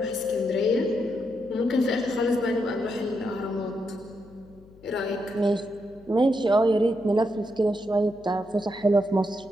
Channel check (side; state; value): left; noise; hum, 25 dB below the sound